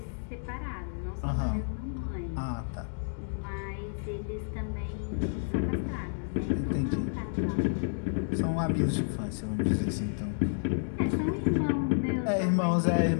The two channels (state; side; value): silent; right; digital silence